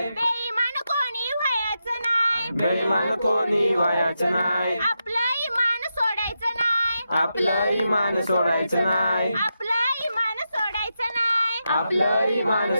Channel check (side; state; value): both; inverted; correlation -0.87